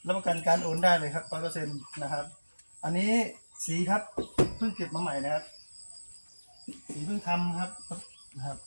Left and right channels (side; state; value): both; inverted; correlation -1.00